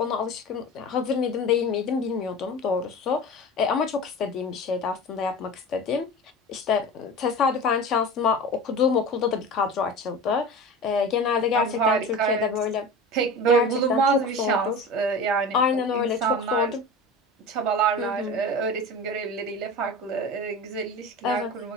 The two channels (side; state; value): both; normal; correlation 0.32